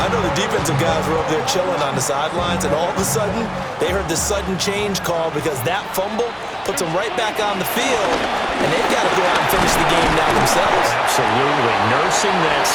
know the defensive guys were over there chilling on the sidelines, and all of a sudden, they heard the sudden change call because that fumble puts them right back on the field, and they've got to go out and finish the game now themselves. Absolutely. Nursing that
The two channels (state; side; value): identical; both; correlation 1.00